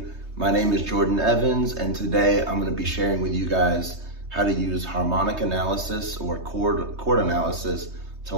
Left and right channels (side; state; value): left; late; 3.2 ms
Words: my name is Jordan Evans, and today I'm going to be sharing with you guys how to use harmonic analysis or chord analysis to